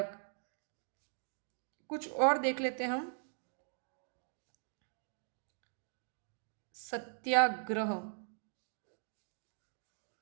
कुछ और देख लेते हैं हम। सत्याग्रह,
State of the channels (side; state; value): left; silent; digital silence